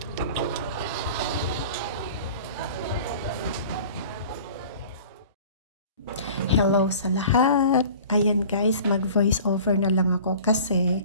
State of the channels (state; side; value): inverted; both; correlation -0.44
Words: Hello sa lahat. Ayan guys, mag-voice over na lang ako